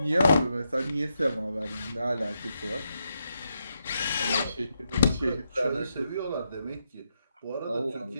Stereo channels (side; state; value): both; inverted; correlation -0.83